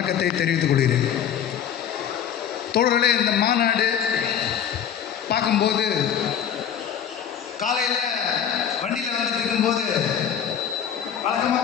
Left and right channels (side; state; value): right; quieter; 8.9 dB